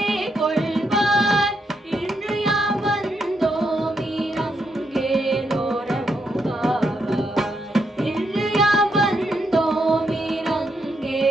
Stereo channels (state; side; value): normal; both; correlation 0.79